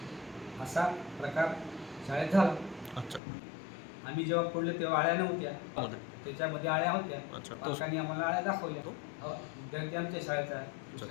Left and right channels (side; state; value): right; drops out; at 3.2 s